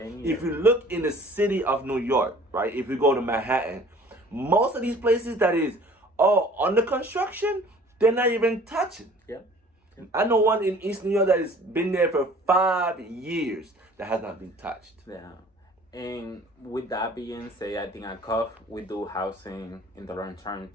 you look in the city of New York, right? If you go to Manhattan, most of these places that is under construction, they're not even touching. Yeah. I know one in East New York that has been there for 5 years that has not been touched. Yeah. And with that being said, I think at CUFFH, we do housing in the long term,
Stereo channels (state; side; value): normal; both; correlation 0.50